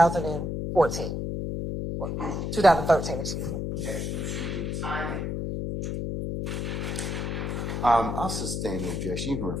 2013, excuse me. Objection to the timing. I'll sustain the objection. You can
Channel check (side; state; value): left; noise; hum, 2 dB below the sound